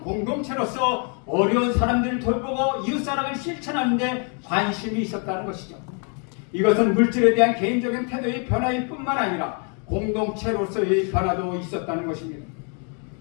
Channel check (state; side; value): quieter; right; 39.0 dB